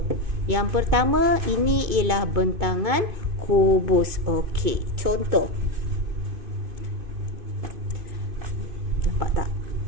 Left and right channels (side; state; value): left; late; 2.5 ms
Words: Yang pertama, ini ialah bentangan kubus. Okey. Contoh. Nampak tak?